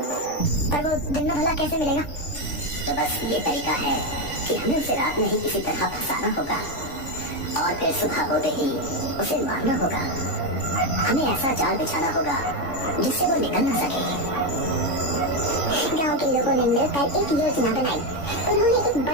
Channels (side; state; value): right; late; 3.5 ms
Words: पर वो दिन में भला कैसे मिलेगा? तो बस ये तरीका है कि हमें उसे रात में ही किसी तरह फंसाना होगा और फिर सुबह होते ही उसे मारना होगा। हमें ऐसा जाल बिछाना होगा जिससे वो निकल न सके। गांव के लोगों ने मिलकर एक योजना बनाई। उन्होंने एक